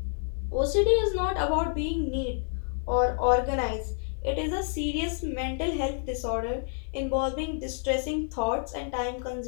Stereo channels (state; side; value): silent; right; 59 dB below the other